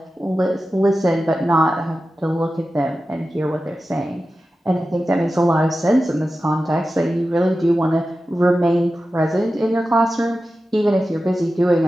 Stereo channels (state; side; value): normal; both; correlation 0.93